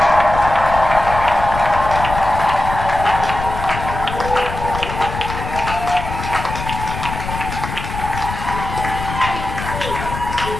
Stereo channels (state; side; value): noise; left; rumble, 7 dB below the sound